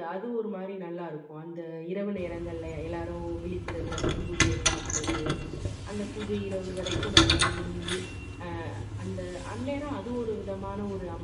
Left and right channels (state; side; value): identical; both; correlation 1.00